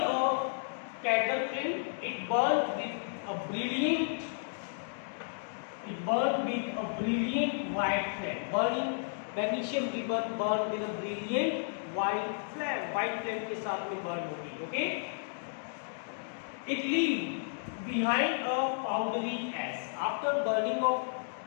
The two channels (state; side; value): silent; right; digital silence